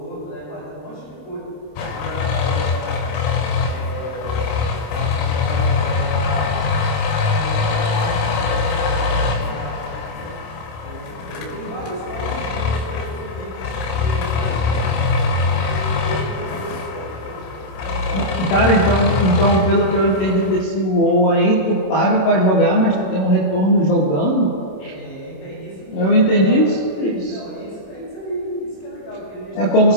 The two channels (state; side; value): late; right; 27 ms